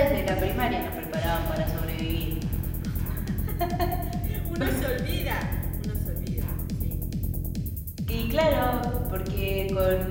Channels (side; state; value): both; identical; correlation 1.00